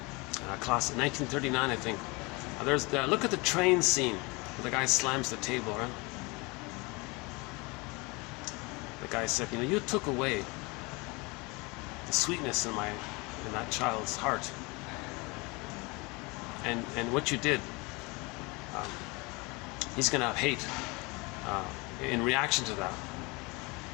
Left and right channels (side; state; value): right; quieter; 26.5 dB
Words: class 1939, I think. Look at the train scene where the guy slams the table, right? The guy said, you know, you took away the sweetness in that child's heart, and what you did, he's going to have hate in reaction to that.